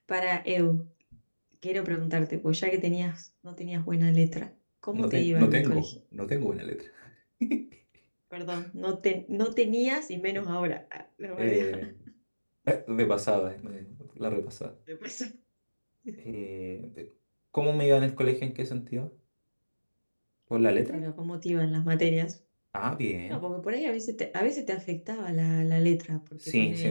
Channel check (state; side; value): inverted; both; correlation -1.00